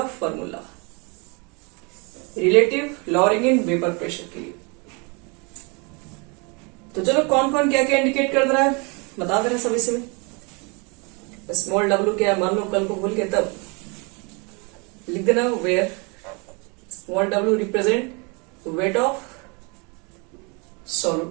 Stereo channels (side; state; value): left; quieter; 31.3 dB